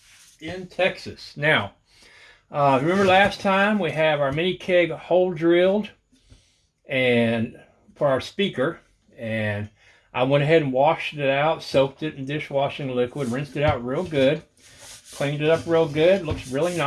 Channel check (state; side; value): identical; both; correlation 1.00